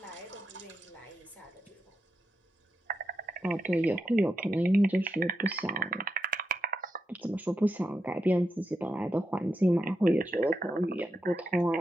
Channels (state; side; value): normal; both; correlation 0.86